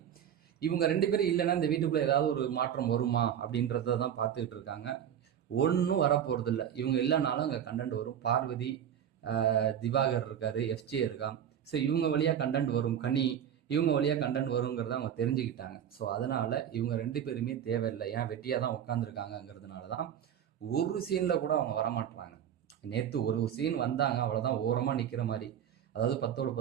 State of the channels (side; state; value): left; quieter; 9.4 dB